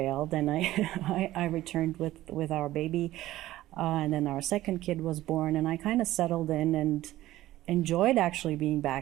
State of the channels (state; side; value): quieter; left; 15.4 dB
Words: and I returned with our baby, and then our second kid was born, and I kind of settled in and enjoyed actually being